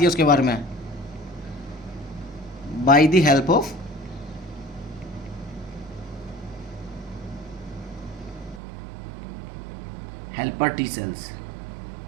है उसके बारे में? By the help of helper T cells.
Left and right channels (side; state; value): left; drops out; at 8.6 s